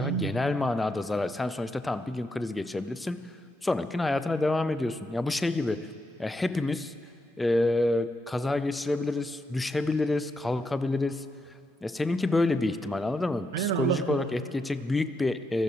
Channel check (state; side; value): normal; both; correlation 0.83